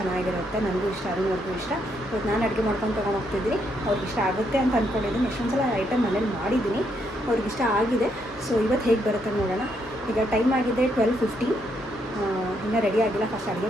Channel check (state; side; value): normal; both; correlation 0.75